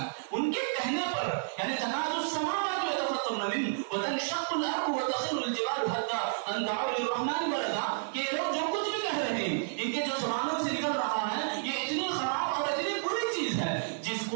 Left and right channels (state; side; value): silent; left; 57 dB below the other